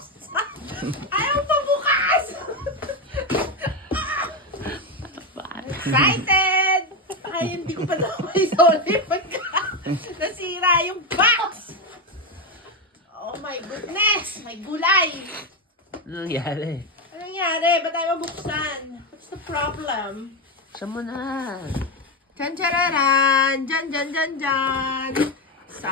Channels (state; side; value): normal; both; correlation 0.11